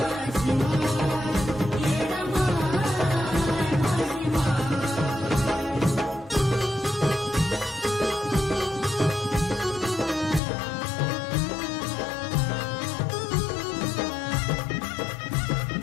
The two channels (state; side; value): drops out; right; at 10.4 s